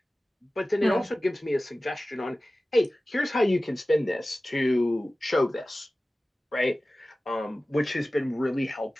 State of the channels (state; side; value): normal; both; correlation 0.96